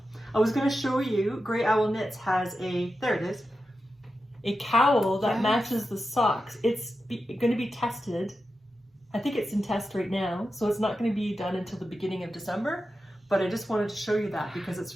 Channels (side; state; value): both; normal; correlation 0.90